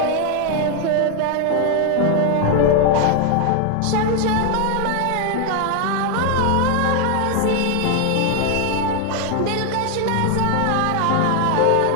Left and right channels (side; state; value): both; different; correlation 0.00